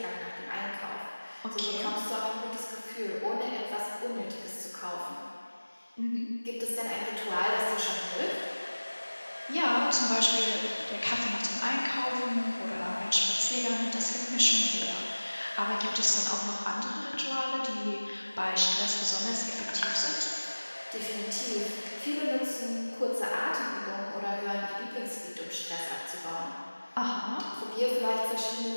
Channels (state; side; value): inverted; both; correlation -1.00